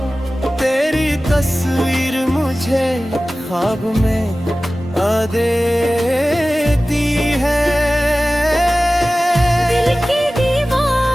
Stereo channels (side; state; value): both; normal; correlation 0.96